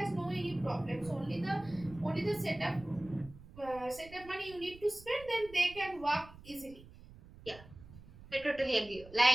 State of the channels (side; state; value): right; noise; rumble, 19 dB below the sound